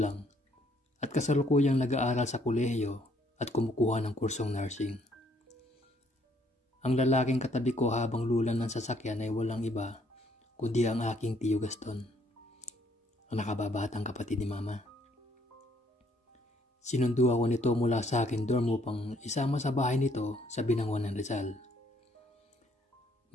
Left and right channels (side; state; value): both; normal; correlation 0.66